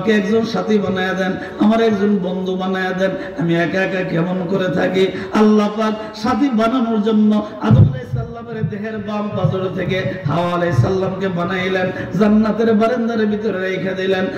একজন সাথী বানায়া দেন, আমার একজন বন্ধু বানায়া দেন, আমি একা একা কেমন করে থাকি। আল্লাহ পাক সাথী বানানোর জন্য আদম আলাইহিস সালামের দেহের বাম পাজর থেকে হাওয়া আলাইহিস সালামকে বানাইলেন, জান্নাতের বারান্দার ভিতরে রেখে দিলেন।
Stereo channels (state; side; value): identical; both; correlation 1.00